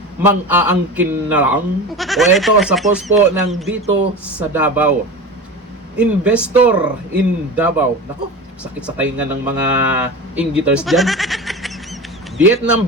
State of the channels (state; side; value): normal; both; correlation 0.29